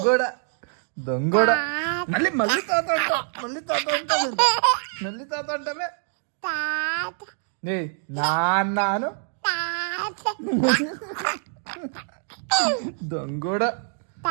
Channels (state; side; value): silent; left; digital silence